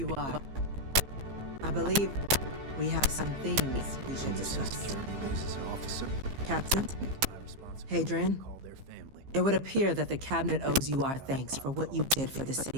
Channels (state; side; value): late; left; 15 ms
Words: are. I believe we have some things we should discuss. Captain, Hadrian, it would appear that the Cabinet owes you our thanks for what you did for the